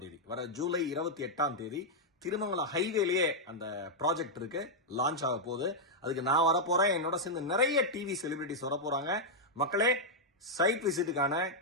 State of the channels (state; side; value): normal; both; correlation -0.04